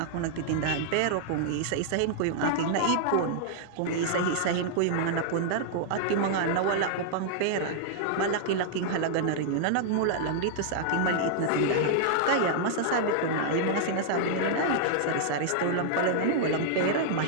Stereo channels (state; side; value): different; both; correlation -0.01